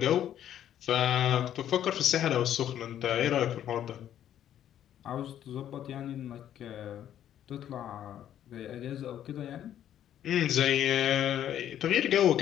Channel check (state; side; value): quieter; right; 10.8 dB